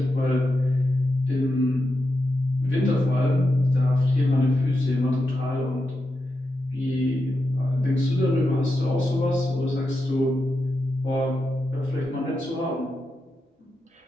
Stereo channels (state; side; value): normal; both; correlation 0.87